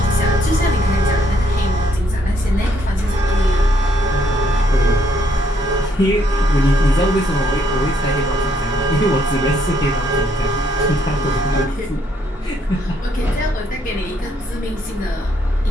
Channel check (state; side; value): normal; both; correlation 0.70